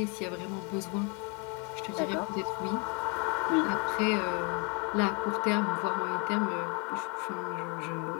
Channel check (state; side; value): quieter; right; 34.1 dB